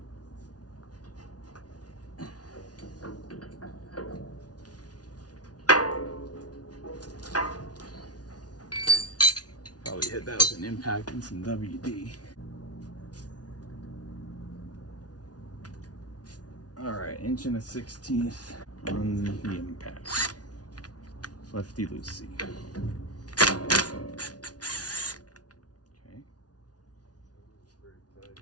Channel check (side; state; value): right; late; 0.69 ms